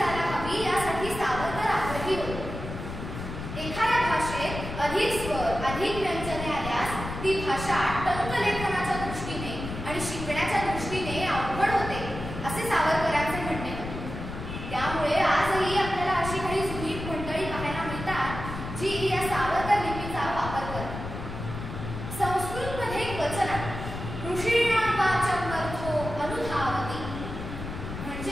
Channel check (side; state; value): left; noise; rumble, 8 dB below the sound